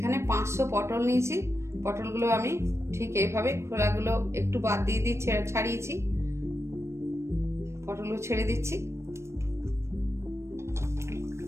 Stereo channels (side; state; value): left; late; 0.13 ms